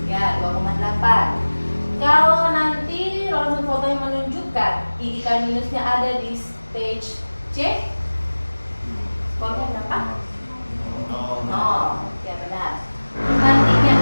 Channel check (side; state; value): both; inverted; correlation -1.00